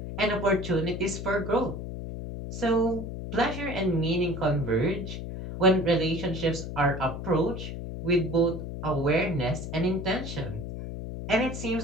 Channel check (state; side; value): noise; left; hum, 7 dB below the sound